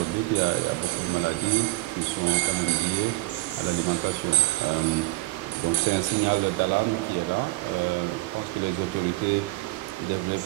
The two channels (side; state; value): left; quieter; 20.8 dB